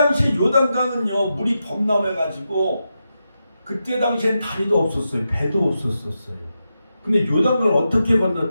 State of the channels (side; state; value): both; inverted; correlation -0.88